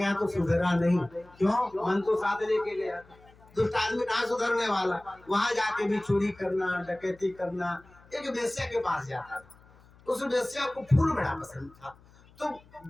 तो सुधरा नहीं। क्यों? मन तो साथ लेके गया, दुष्ट आदमी कहाँ सुधरने वाला। वहां जाके भी चोरी करना, डकैती करना। एक वेश्या के पास जाता था, उस वेश्या को फूल बड़ा पसंद था, तो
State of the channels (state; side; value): noise; left; hum, 26 dB below the sound